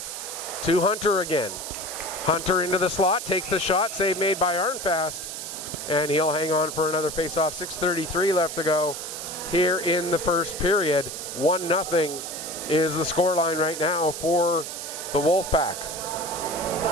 To Hunter again. Hunter into the slot, takes the shot. Save made by Arnfast. And he'll hang on for another face-off. 6:33 left to go here in the first period. 1-0 is the scoreline right now for the Wolfpack.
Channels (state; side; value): noise; right; hiss, 7 dB below the sound